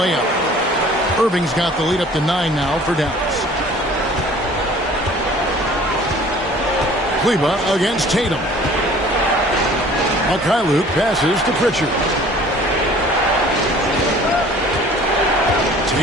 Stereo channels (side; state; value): both; normal; correlation 0.50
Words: Irving's got the lead up to 9 now for Dallas. Kleber against Tatum. Mikhailuk passes to Pritchard.